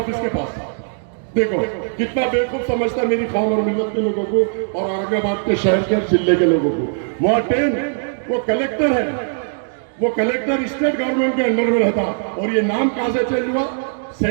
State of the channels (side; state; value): left; silent; digital silence